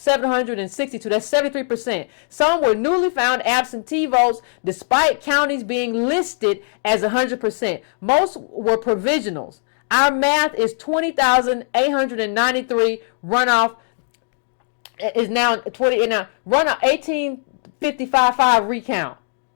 That's 73%. Some were newly found absentee votes despite counties being listed as 100%. Most were provisionals. Our math is 20,893. Runoff is now 20. Now runoff 1855 recount.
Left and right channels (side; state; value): right; silent; digital silence